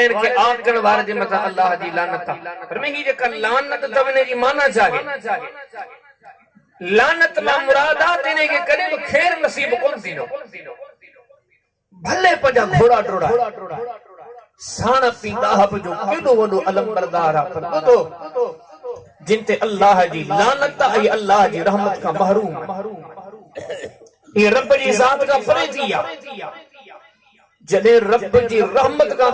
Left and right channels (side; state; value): both; identical; correlation 1.00